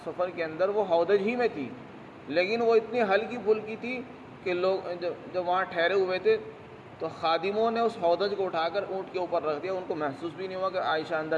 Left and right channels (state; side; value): identical; both; correlation 1.00